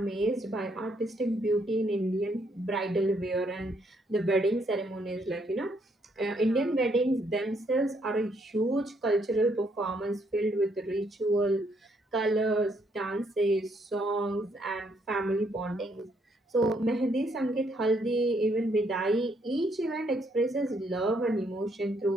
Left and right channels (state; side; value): normal; both; correlation 0.72